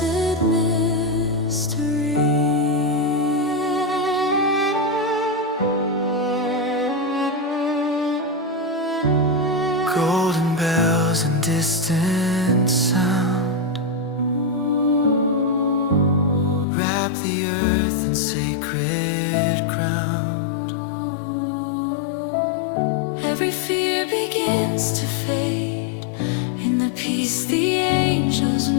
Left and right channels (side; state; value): right; drops out; at 16.7 s